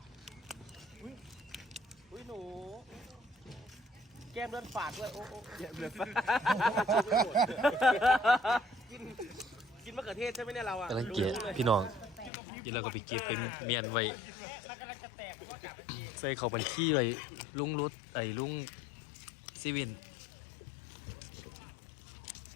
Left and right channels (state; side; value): drops out; right; at 12.3 s